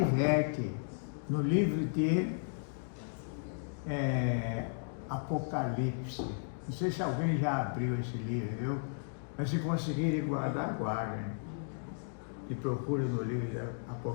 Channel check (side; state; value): right; silent; digital silence